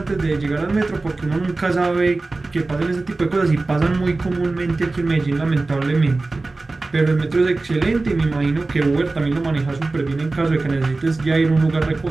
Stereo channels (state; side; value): quieter; left; 3.4 dB